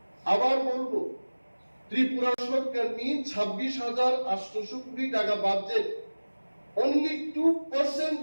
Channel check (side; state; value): both; inverted; correlation -1.00